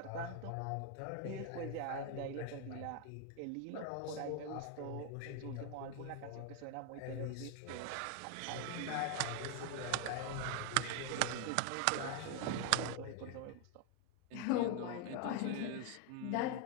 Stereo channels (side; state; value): both; different; correlation 0.01